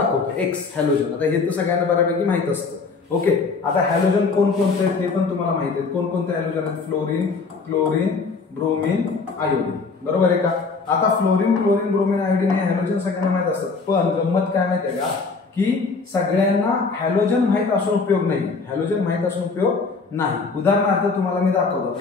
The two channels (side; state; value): right; quieter; 4.4 dB